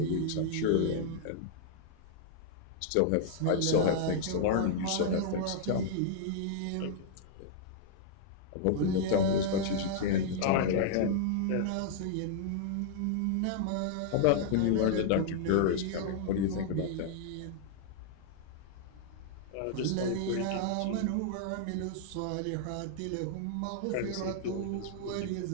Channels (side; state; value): both; different; correlation -0.01